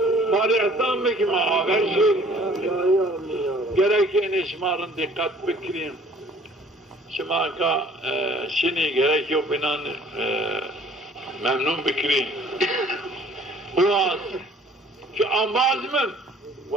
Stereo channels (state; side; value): normal; both; correlation 0.54